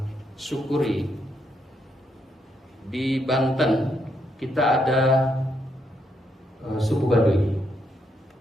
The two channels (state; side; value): normal; both; correlation 0.77